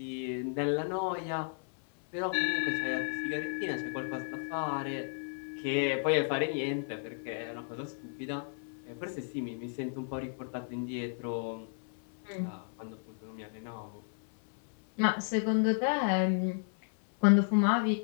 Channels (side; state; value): right; silent; 56 dB below the other